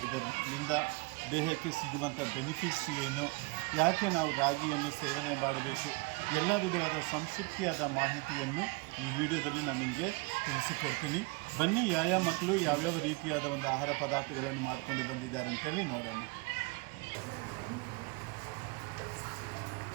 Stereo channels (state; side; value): quieter; left; 28.0 dB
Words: ಇದರಿಂದ ದೇಹಕ್ಕೆ ಸಿಗುವಂಥ ಬೆನಿಫಿಟ್ಸ್ ಏನು, ಯಾಕೆ ನಾವು ರಾಗಿಯನ್ನು ಸೇವನೆ ಮಾಡಬೇಕು, ಎಲ್ಲ ವಿಧವಾದ ಸಂಸ್ಕೃತಿಯಾದ ಮಾಹಿತಿಯನ್ನು ಈ ವಿಡಿಯೋದಲ್ಲಿ ನಾನು ನಿಮಗೆ ತಿಳಿಸಿಕೊಡ್ತೀನಿ. ಬನ್ನಿ, ಯಾವ ಮಕ್ಕಳು ಯಾವ್ಯಾವ ರೀತಿಯಾದ ಒಂದು ಆಹಾರ ಪದಾರ್ಥಗಳನ್ನು ಮಾಡಿಕೊಂಡು ಬಂದಿದ್ದಾರೆ ಅಂತೇಳಿ ನೋಡೋಣ.